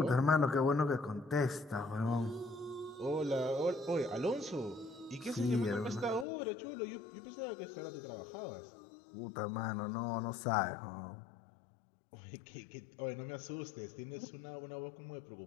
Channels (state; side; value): drops out; right; at 6.2 s